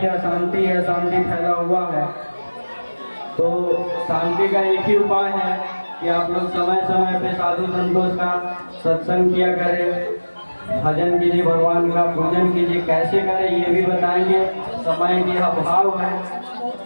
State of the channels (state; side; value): inverted; both; correlation -1.00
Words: अशांति है, अशांति फैला हुआ है। तो शांति का एक ही उपाय है कि आप लोग समय समय पे साधु संतों का सत्संग किया करें, भजन कीजिए, भगवान का पूजन कीजिए। कैसे करें ये भी बताएंगे, समय की अभाव है